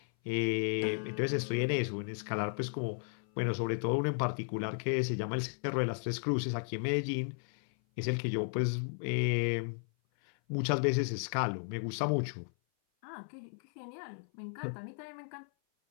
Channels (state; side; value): silent; right; 55 dB below the other